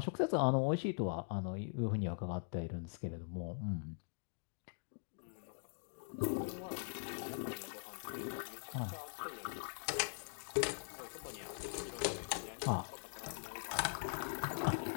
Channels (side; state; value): right; silent; digital silence